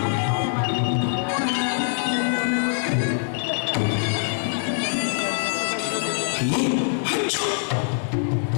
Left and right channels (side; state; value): right; silent; digital silence